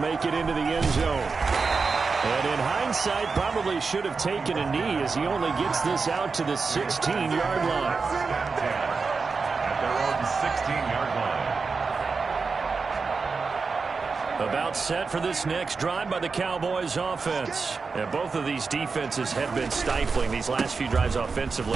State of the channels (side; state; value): left; quieter; 4.7 dB